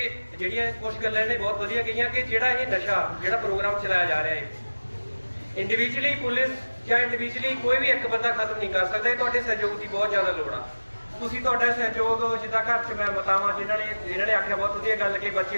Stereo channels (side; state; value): both; inverted; correlation -1.00